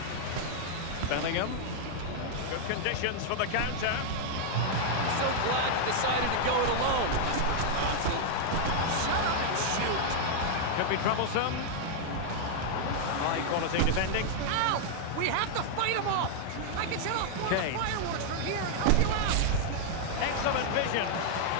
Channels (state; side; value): different; both; correlation -0.01